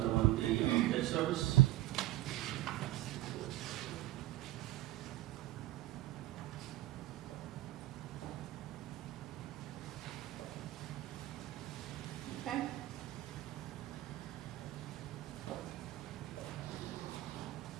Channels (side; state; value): left; quieter; 16.2 dB